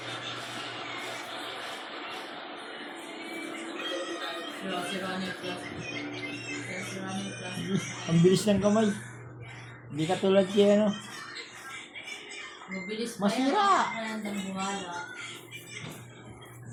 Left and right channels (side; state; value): both; identical; correlation 1.00